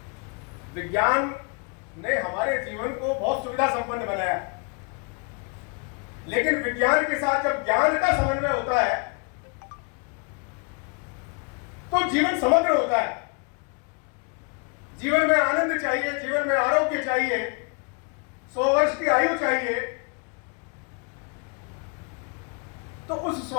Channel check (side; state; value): right; quieter; 33.9 dB